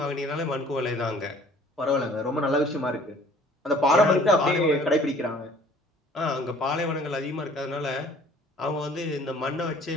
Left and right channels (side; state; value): both; normal; correlation 0.53